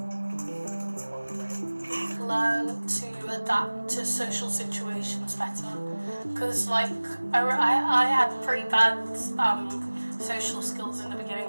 it's on the way. Learn to adapt to social situations better, because like I had pretty bad social skills in the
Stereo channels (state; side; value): inverted; both; correlation -1.00